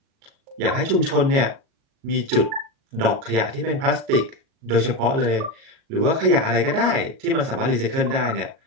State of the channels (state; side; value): late; left; 37 ms